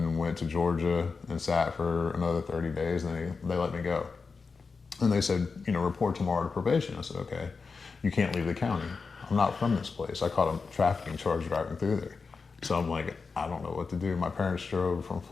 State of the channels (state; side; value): quieter; right; 4.7 dB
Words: went to Georgia and sat for another 30 days, and they let me go. And they said, report tomorrow to probation. I said, okay. You can't leave the county. I'm not from this place. I caught a trafficking charge driving through there. So I'm like, I don't know what to do. My parents drove from